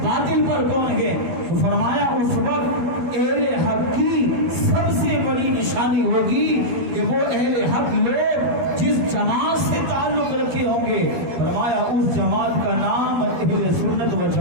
باطل پر کون ہے، تو فرمایا اس وقت اہل حق کی سب سے بڑی نشانی ہوگی کہ وہ اہل حق لوگ جس جماعت سے تعلق رکھے ہوں گے، فرمایا اس جماعت کا نام اہل سنت و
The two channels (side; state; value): left; late; 12 ms